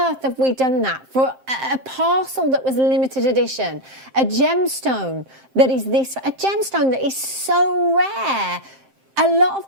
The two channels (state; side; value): late; left; 7.7 ms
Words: have we done that for a parcel that was limited edition? A gemstone that is a gemstone that is so rare. A lot